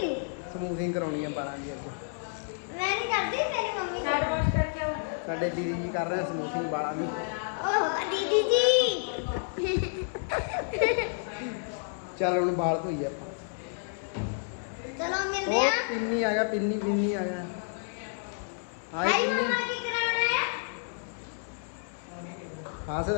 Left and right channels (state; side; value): silent; right; 58 dB below the other